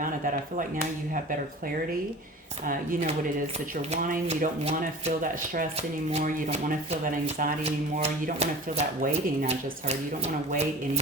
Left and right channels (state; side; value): normal; both; correlation 0.37